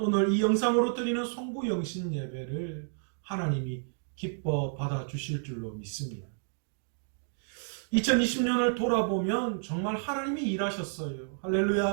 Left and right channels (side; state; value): left; silent; digital silence